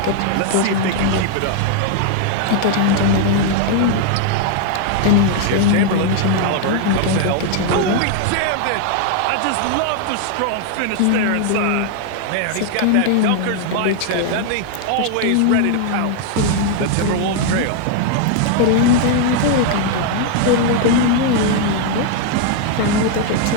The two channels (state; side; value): different; both; correlation 0.00